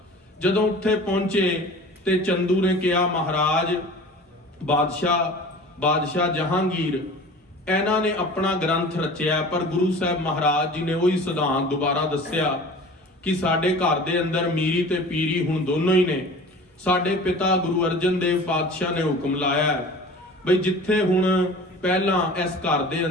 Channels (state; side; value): normal; both; correlation 0.41